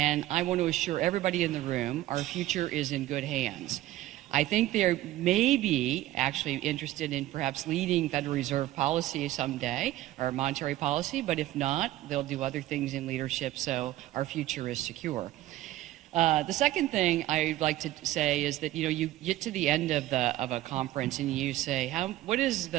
I want to assure everybody in the room our future is in good hands. I think they may be actually interested in perhaps leading Federal Reserve policy someday, or monetary policy, but if not, they'll do other things in leadership, so our future is secure. The second thing I'd like to say is that, you get to the end of a conference and you say, what is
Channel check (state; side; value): quieter; left; 15.4 dB